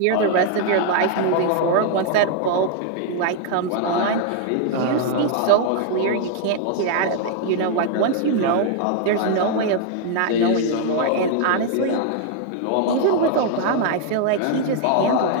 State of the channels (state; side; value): different; both; correlation 0.00